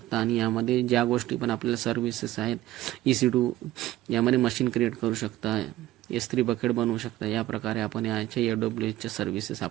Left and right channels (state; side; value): quieter; left; 15.4 dB